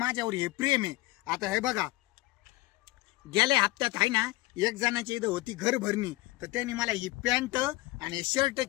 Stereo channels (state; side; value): quieter; right; 20.0 dB